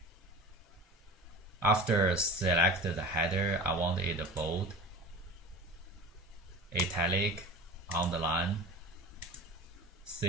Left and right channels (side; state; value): both; normal; correlation 0.36